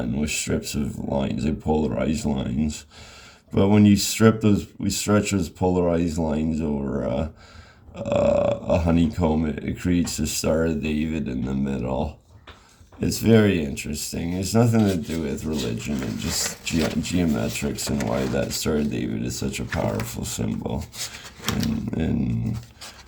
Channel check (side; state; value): both; identical; correlation 1.00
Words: with strips of lines, like polarized lines. But when you we stretch those polarized lines over a honeycomb, it creates the Star of David in the middle. It's very interesting. It's nothing to do with religion and just geometrics and why that Star of David is such a powerful symbol in